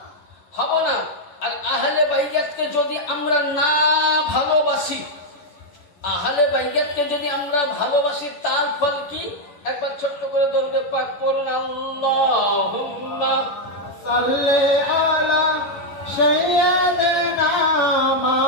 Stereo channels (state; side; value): late; right; 10 ms